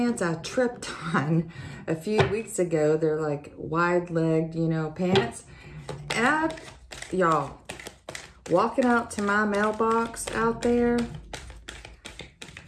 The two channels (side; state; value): both; identical; correlation 1.00